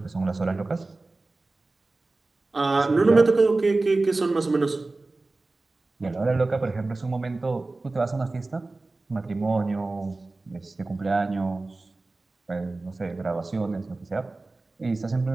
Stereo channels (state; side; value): quieter; left; 3.3 dB